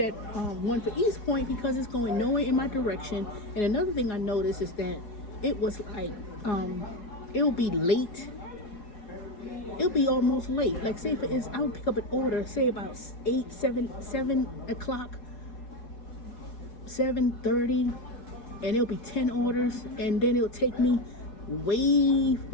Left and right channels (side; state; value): right; late; 4.4 ms